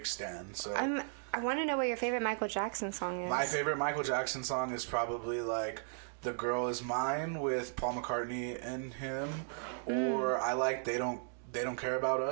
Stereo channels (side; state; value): left; silent; digital silence